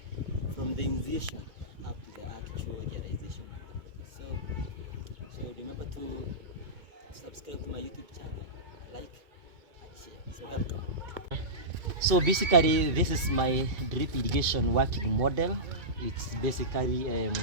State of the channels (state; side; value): late; left; 2.3 ms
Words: from the initiation up to the actual realization. So remember to subscribe to my YouTube channel, like and share. So welcome. So basically this is my drip irrigation working model. It's basically